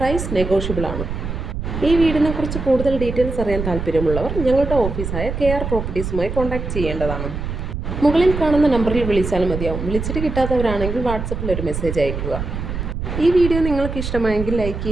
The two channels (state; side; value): noise; right; rumble, 5 dB below the sound